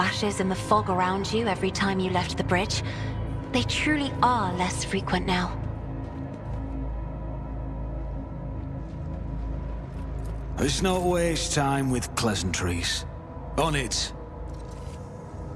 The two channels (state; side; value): identical; both; correlation 1.00